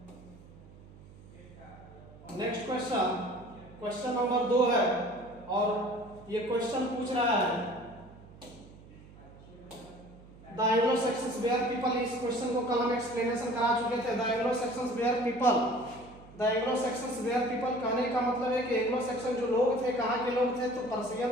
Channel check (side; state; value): right; noise; hum, 21 dB below the sound